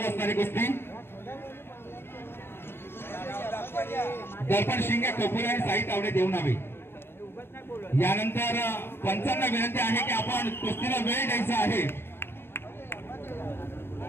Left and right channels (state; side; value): late; right; 0.11 ms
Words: असणारी कुस्ती. दर्पण शिंगे खोपोळे आणि साई तावडे देवणावी. यानंतर पंचांना विनंती आहे की आपण कुस्तीला वेळ द्यायचा आहे